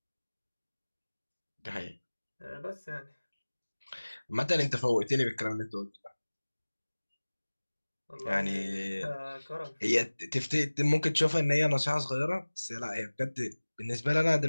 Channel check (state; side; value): inverted; both; correlation -1.00